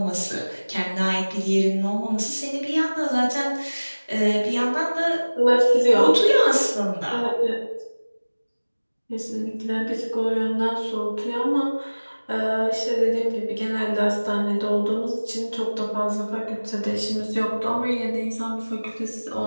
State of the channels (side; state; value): both; inverted; correlation -1.00